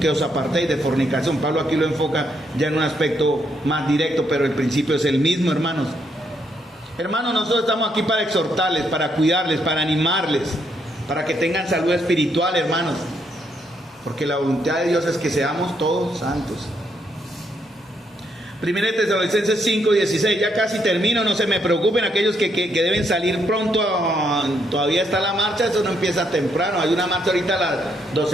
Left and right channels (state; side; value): normal; both; correlation 0.75